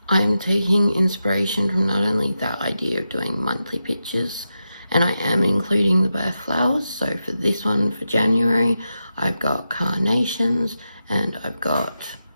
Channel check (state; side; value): inverted; both; correlation -0.89